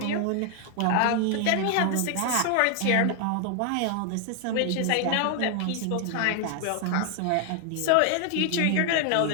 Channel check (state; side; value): different; both; correlation 0.00